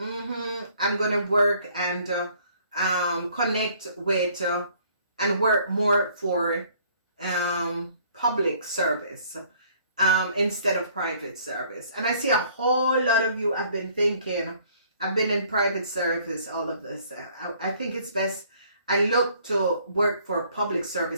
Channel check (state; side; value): inverted; both; correlation -0.60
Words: gonna work and connect with and work more for public service instead of private service. And I see a whole lot of you have been thinking, I've been in private service, all of this. I think it's best I look to work for public